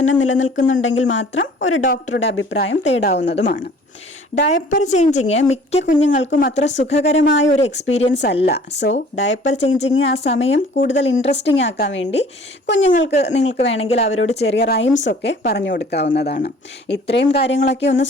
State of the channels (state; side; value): normal; both; correlation 0.51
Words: നിലനിൽക്കുന്നുണ്ടെങ്കിൽ മാത്രം ഒരു ഡോക്ടറുടെ അഭിപ്രായം തേടാവുന്നതുമാണ്. ഡയപ്പർ ചേഞ്ചിങ് മിക്ക കുഞ്ഞുങ്ങൾക്കും അത്ര സുഖകരമായ ഒരു എക്സ്പീരിയൻസ് അല്ല. സോ ഡയപ്പർ ചേഞ്ചിങ് ആ സമയം കൂടുതൽ ഇൻട്രസ്റ്റിംഗ് ആക്കാൻ വേണ്ടി നിങ്ങൾക്ക് വേണമെങ്കിൽ അവരോട് ചെറിയ റൈംസ് ഒക്കെ പറഞ്ഞു കൊടുക്കാവുന്നതാണ്. ഇത്രയും കാര്യങ്ങളൊക്കെ ഒന്ന്